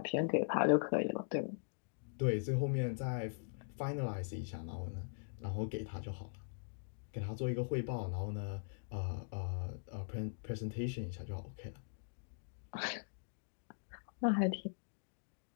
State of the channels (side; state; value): right; silent; digital silence